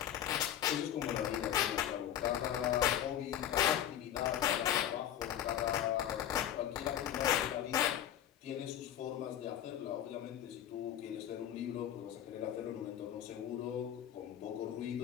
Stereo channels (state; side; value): quieter; right; 10.9 dB